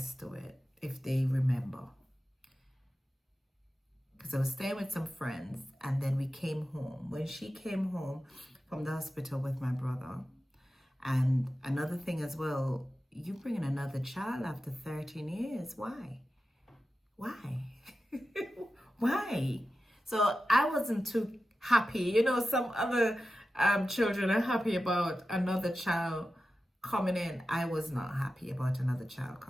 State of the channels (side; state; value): both; normal; correlation 0.93